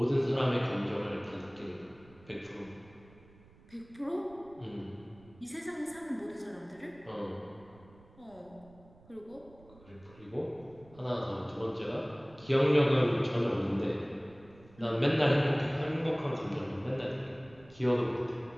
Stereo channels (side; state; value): right; noise; rumble, 25 dB below the sound